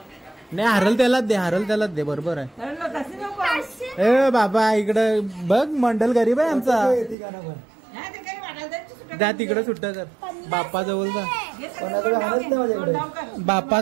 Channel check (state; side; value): drops out; left; at 7.2 s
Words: नाही हरल त्यालाच दे. बरोबर आहे. ए बाबा इकडं बघ मंडल गरीब आहे आमचा. जा तिकडे सुट्ट कर. बाप्पा जवळ जा